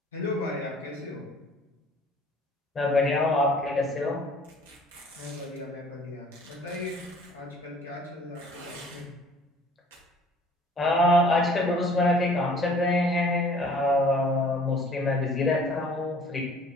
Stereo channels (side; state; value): both; normal; correlation 0.53